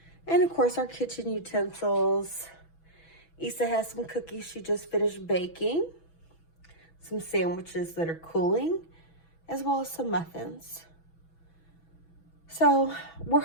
and of course our kitchen utensils. Issa has some cookies she just finished baking, some sandwiches that are cooling, as well as some muffins. So we're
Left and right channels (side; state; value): right; late; 6.1 ms